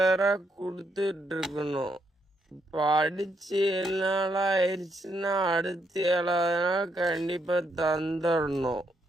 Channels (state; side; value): normal; both; correlation 0.77